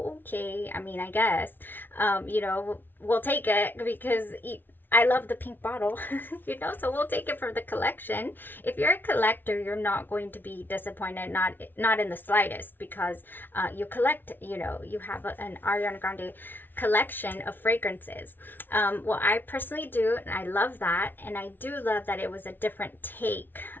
okay. I mean, I guess, you know, we'll take it because I love the pink bottle, you know, so we'll take it for the collection. If you're a collector, you're not going to be disappointed, not in the slightest, because you collect, you know, you have an Ariana Grande collection of fragrances. Well, I personally do, and I love that, and I do love that it was a different take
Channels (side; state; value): right; late; 0.094 ms